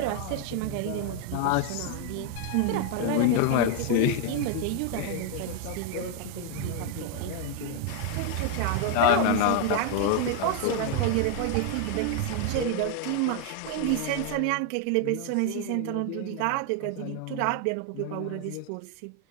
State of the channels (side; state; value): both; different; correlation 0.01